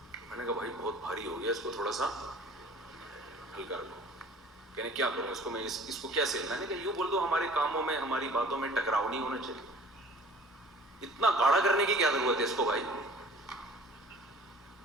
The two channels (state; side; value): normal; both; correlation 0.48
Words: میں نے کہا بھائی بہت بھاری ہو گیا, اس کو تھوڑا سا ہلکا رکھو. کہنے کیا کروں اس کو, میں اس کو کیسے؟ میں نے کہا یوں بول دو ہمارے کاموں میں ہماری باتوں میں ٹکراؤ نہیں ہونا چاہیے. اتنا گاڑا کرنے کی کیا ضرورت ہے اس کو بھائی.